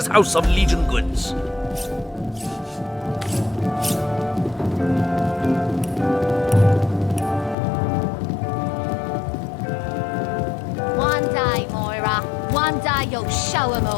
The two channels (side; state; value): right; drops out; at 7.6 s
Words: house of Legion goods. One day, Moira. One day you'll show 'em